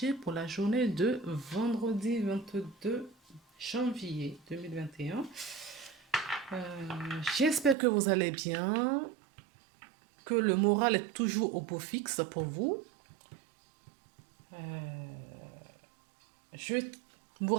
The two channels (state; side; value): drops out; left; at 7.8 s